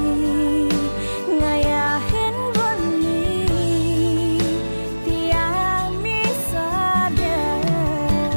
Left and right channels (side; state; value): both; inverted; correlation -1.00